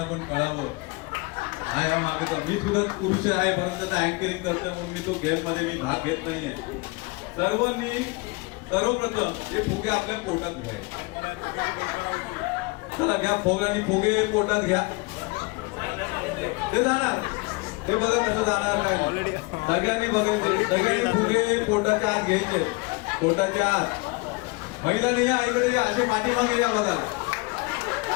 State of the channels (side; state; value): right; quieter; 27.1 dB